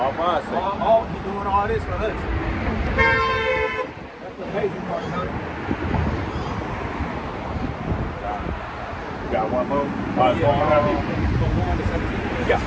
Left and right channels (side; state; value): both; identical; correlation 1.00